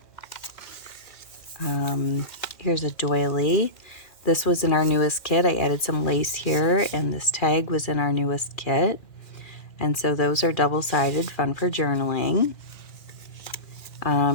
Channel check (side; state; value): right; late; 2.4 ms